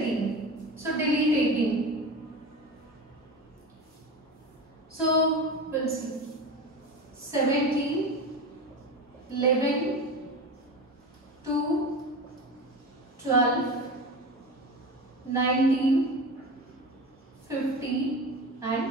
So delete 18. So we'll see 17, 11, 2, 12, 19, 50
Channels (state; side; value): normal; both; correlation 0.28